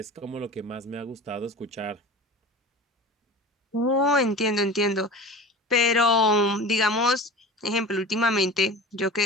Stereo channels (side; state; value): both; normal; correlation 0.34